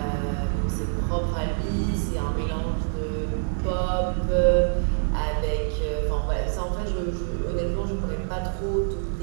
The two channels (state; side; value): silent; left; digital silence